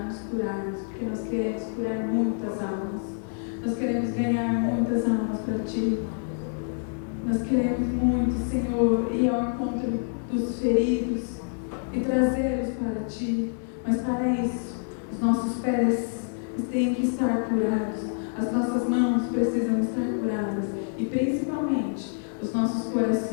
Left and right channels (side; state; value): right; silent; digital silence